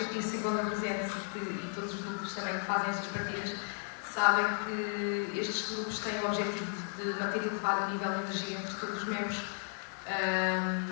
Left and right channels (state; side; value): silent; right; 55 dB below the other